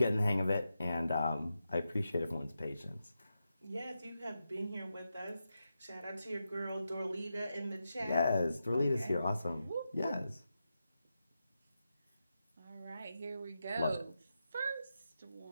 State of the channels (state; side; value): inverted; both; correlation -0.89